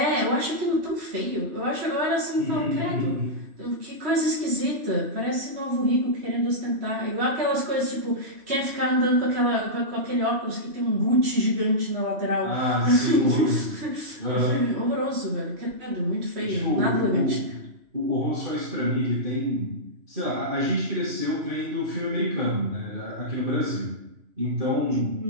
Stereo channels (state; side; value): late; left; 3.1 ms